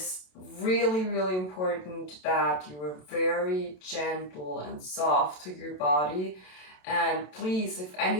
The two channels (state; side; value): late; right; 27 ms